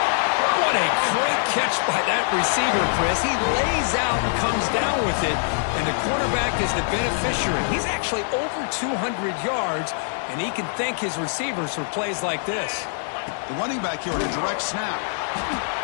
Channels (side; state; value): right; silent; digital silence